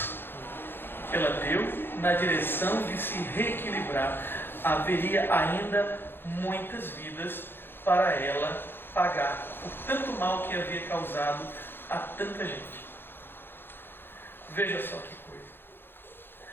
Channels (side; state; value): right; late; 0.10 ms